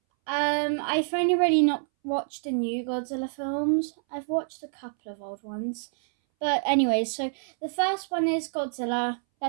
I've only really not watched the new Godzilla films. I've watched a couple of old ones. But anyways, so the first one is Godzilla.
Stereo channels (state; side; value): silent; left; 60 dB below the other